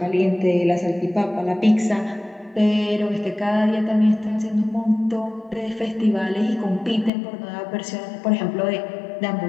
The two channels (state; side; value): drops out; right; at 7.1 s